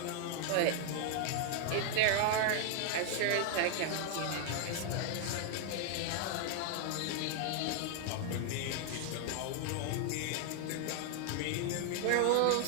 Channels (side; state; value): both; different; correlation 0.00